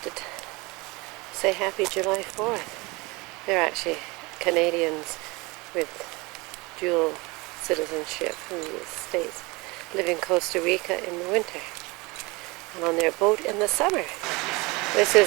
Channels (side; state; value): left; quieter; 25.2 dB